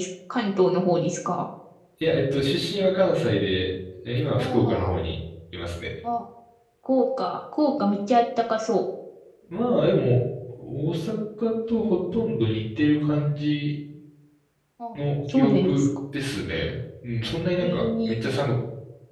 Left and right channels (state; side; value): identical; both; correlation 1.00